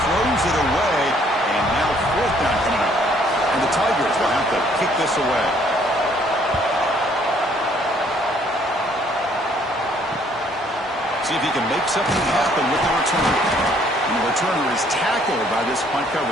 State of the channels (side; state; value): both; normal; correlation 0.63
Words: Throws it away. And now fourth down coming up. And the Tigers will have to kick this away. See if he can make something happen with the return. And the returner is tackled by this punt